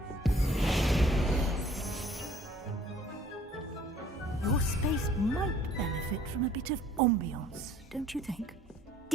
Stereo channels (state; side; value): normal; both; correlation 0.56